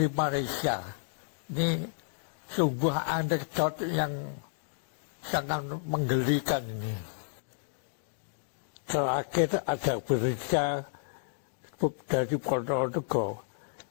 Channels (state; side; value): silent; right; digital silence